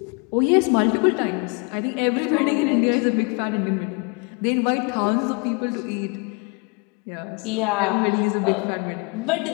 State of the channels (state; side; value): quieter; right; 31.4 dB